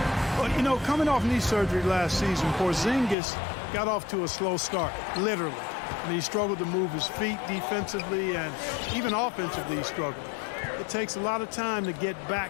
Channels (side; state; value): right; drops out; at 3.2 s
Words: Well, you know, coming off knee surgery last season, Porzingis got off to a slow start, literally. And he struggled to move his feet defensively, and even offensively he struggled. It takes a lot of time to get